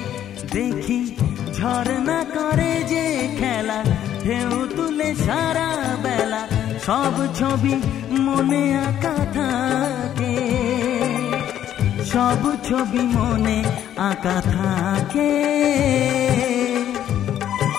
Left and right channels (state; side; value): quieter; right; 10.9 dB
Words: দেখি ঝর্ণা করে যে খেলা, ঢেউ তুলে সারা বেলা, সব ছবি মনে আঁকা থাকে, সব ছবি মনে আঁকা থাকে।